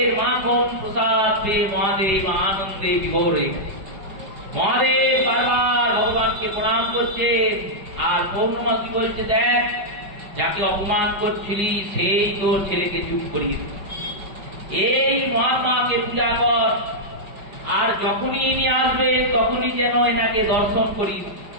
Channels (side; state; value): left; late; 5.3 ms